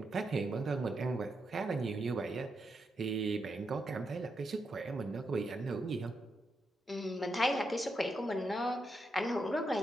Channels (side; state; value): both; normal; correlation 0.83